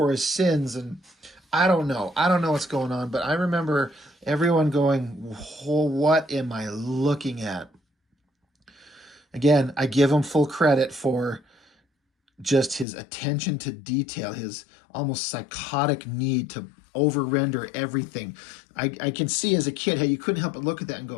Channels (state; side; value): drops out; right; at 12.9 s